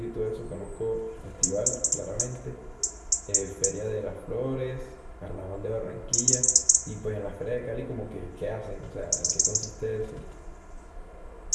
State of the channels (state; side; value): identical; both; correlation 1.00